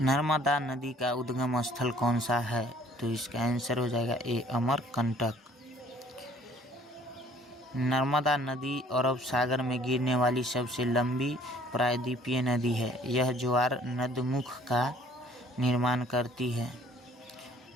नर्मदा नदी का उद्गम स्थल कौन सा है? तो इसका आंसर हो जाएगा ए अमरकंटक। नर्मदा नदी अरब सागर में गिरने वाली सबसे लंबी प्रायद्वीपीय नदी है। यह ज्वार नदमुख का निर्माण करती है।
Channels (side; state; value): both; normal; correlation 0.57